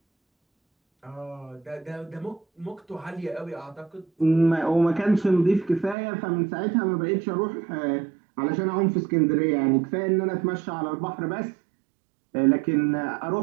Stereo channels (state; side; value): drops out; left; at 6.0 s